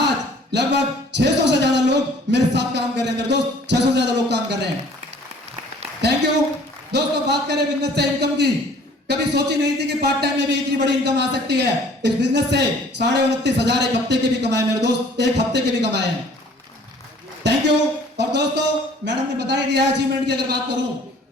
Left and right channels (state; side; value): normal; both; correlation 0.54